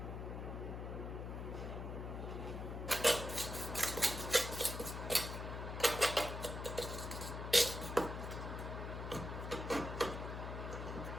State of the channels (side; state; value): left; noise; hum, 5 dB below the sound